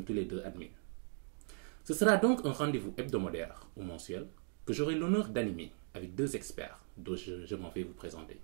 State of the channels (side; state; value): left; silent; 52 dB below the other